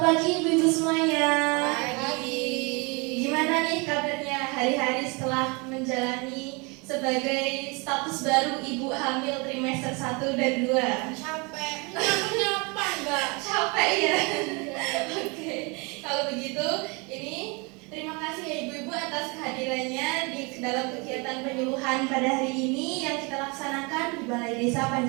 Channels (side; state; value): left; quieter; 29.7 dB